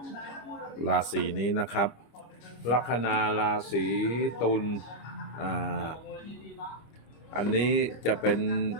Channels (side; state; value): right; late; 25 ms